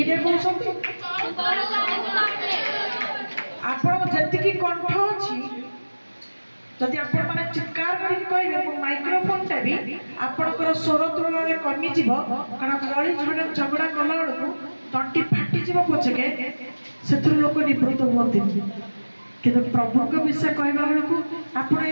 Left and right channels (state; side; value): inverted; both; correlation -1.00